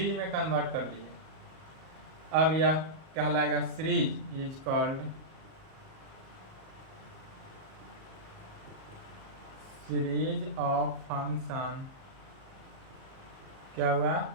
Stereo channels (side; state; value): left; late; 38 ms